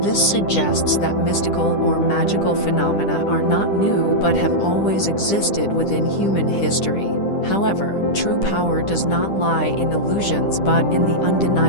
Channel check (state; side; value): late; right; 10 ms